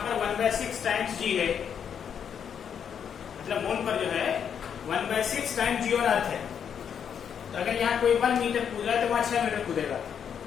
पर 1/6 टाइम्स g है, मतलब मून पर जो है 1/6 टाइम्स g और अर्थ है। तो अगर यहाँ कोई 1 मीटर कूद रहा है तो वहां 6 मीटर कूदेगा।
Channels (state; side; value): quieter; right; 7.9 dB